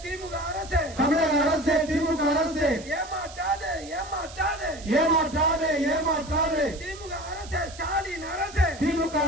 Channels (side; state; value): right; noise; hiss, 17 dB below the sound